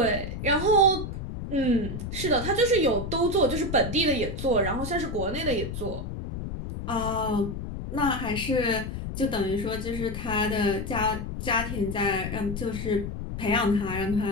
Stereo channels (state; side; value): noise; left; rumble, 6 dB below the sound